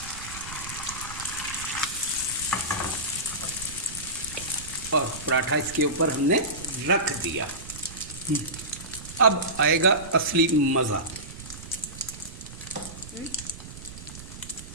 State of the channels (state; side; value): noise; right; rumble, 14 dB below the sound